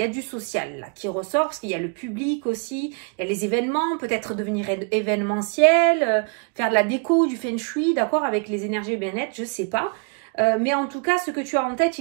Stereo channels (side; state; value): left; quieter; 36.2 dB